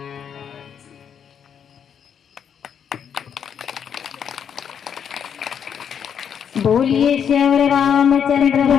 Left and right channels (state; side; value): quieter; right; 8.0 dB